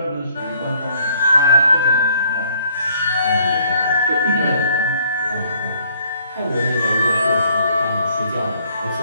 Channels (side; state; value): both; inverted; correlation -0.64